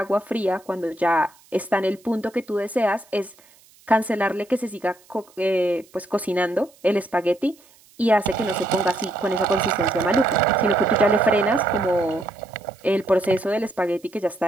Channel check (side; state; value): right; noise; hiss, 29 dB below the sound